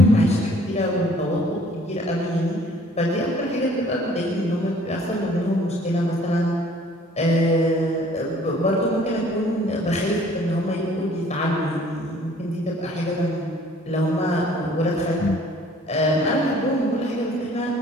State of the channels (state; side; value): normal; both; correlation 0.55